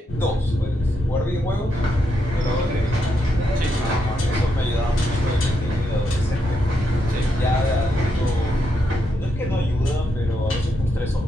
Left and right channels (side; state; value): both; normal; correlation 0.81